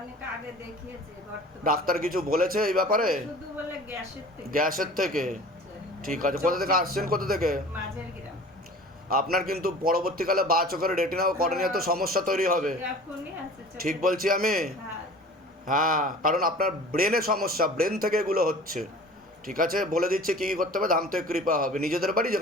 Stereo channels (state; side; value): normal; both; correlation 0.43